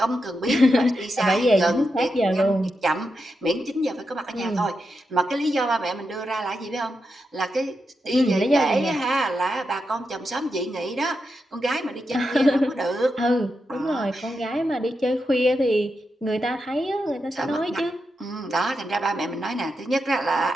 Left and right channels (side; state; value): both; normal; correlation 0.87